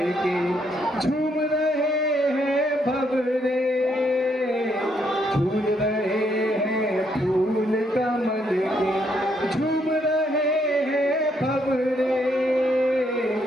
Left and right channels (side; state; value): both; normal; correlation 0.73